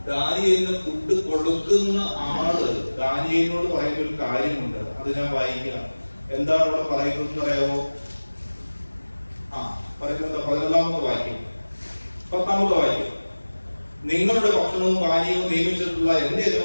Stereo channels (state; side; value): inverted; both; correlation -1.00